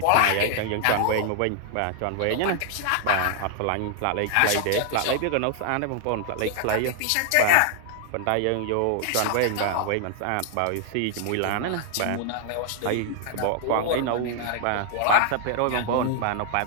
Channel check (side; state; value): both; different; correlation 0.00